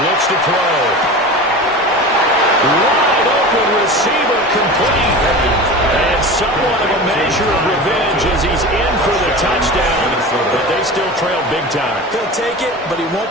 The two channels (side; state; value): both; normal; correlation 0.32